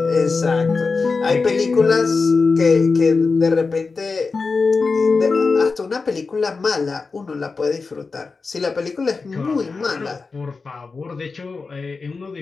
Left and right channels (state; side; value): quieter; right; 4.3 dB